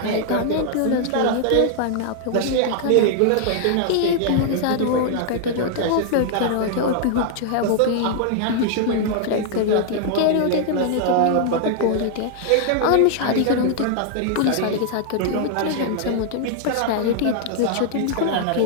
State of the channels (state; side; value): different; both; correlation 0.00